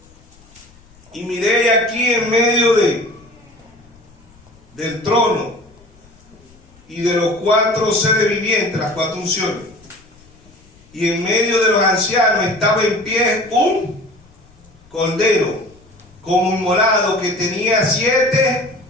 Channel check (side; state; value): left; noise; rumble, 28 dB below the sound